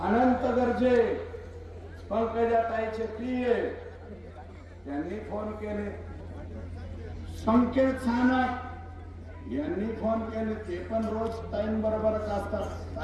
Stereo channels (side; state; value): both; identical; correlation 1.00